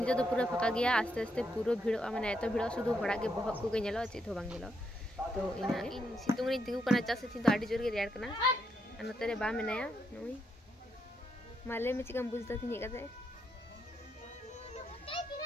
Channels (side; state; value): both; normal; correlation 0.79